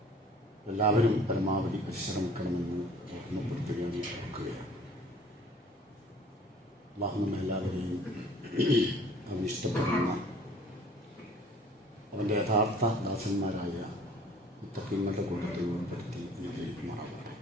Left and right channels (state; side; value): normal; both; correlation 0.51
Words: എല്ലാവരും പരമാവധി പരിശ്രമിക്കണമെന്ന് ഓർമ്മപ്പെടുത്തുകയാണ്, ഓർക്കുകയാണ്. അല്ലാഹു നമ്മെല്ലാവരെയും അവൻ ഇഷ്ടപ്പെടുന്ന അവൻ്റെ യഥാർത്ഥ ദാസന്മാരായ മുത്തക്കീങ്ങളുടെ കൂട്ടത്തിൽ ഉൾപ്പെടുത്തി അനുഗ്രഹിക്കുമാറാകട്ടെ.